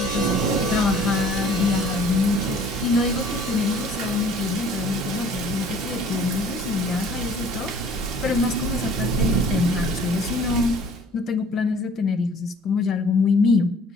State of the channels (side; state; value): both; normal; correlation 0.53